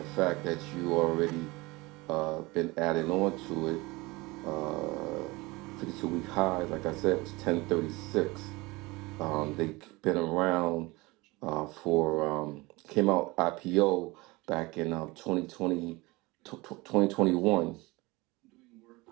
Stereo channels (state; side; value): quieter; left; 23.0 dB